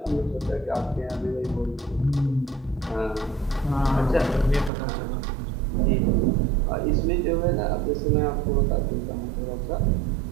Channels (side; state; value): left; drops out; at 4.7 s